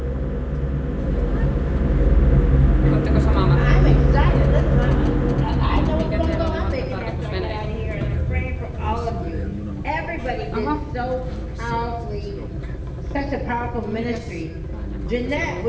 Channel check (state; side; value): identical; both; correlation 1.00